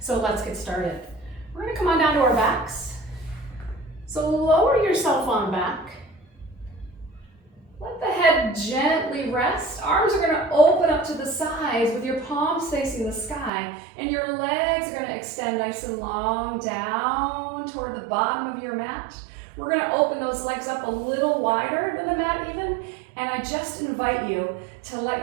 let's get started. We're going to come on down to our backs. So lower yourself on back. Let the head gently rest. Arms are going to open up to the sides with your palms facing the sky, and your legs are going to extend nice and long down toward the bottom of your mat. We're going to open those legs up a little wider than the mat even, and I just invite you to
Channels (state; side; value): drops out; left; at 13.5 s